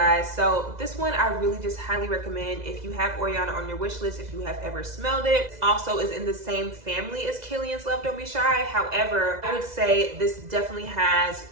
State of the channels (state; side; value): late; left; 2.0 ms